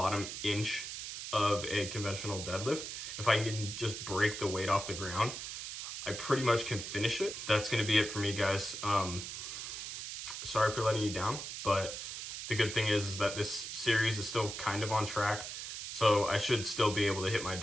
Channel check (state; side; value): noise; right; hiss, 7 dB below the sound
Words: inch of a conventional deadlift. If I can just break the weight off the ground, I pretty much can finish it. That's gonna be it for me, guys. Sorry for letting you down, but the good thing is that this series is still kind of on track, so I should still be able to hit my